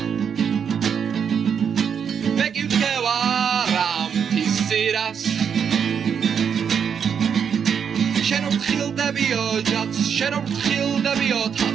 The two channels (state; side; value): quieter; left; 7.3 dB